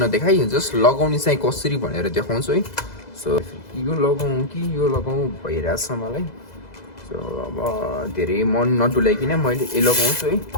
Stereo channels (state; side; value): late; right; 2.0 ms